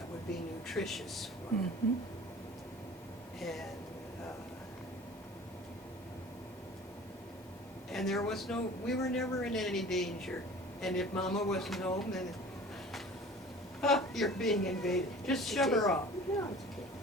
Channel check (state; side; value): normal; both; correlation 0.43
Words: would be nutritious for them. Mhm. And there was we were never in any danger. And if Mama wasn't home, then, you're being invaded. Just shove her off. No, it's okay.